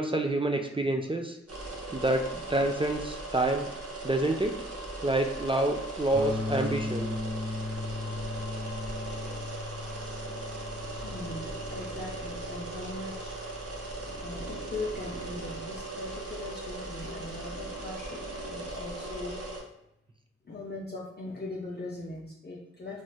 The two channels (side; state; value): both; normal; correlation 0.55